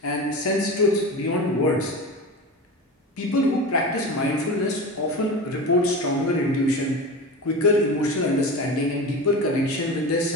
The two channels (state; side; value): normal; both; correlation 0.28